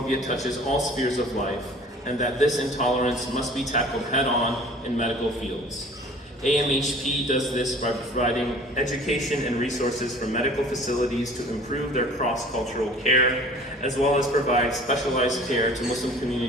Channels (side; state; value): both; normal; correlation 0.47